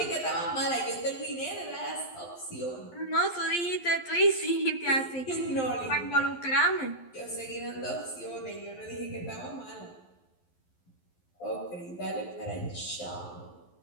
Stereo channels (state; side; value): late; right; 11 ms